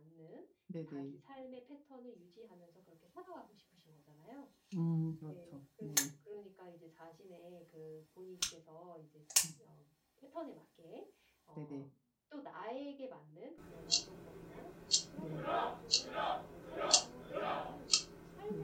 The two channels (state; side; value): identical; both; correlation 1.00